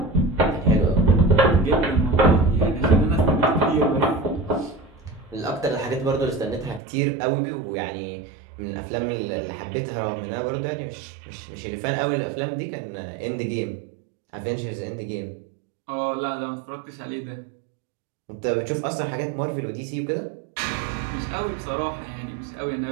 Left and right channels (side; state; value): left; drops out; at 6.8 s